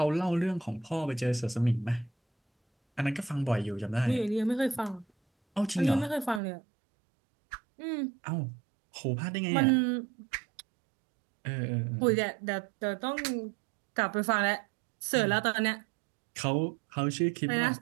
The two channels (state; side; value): drops out; left; at 6.4 s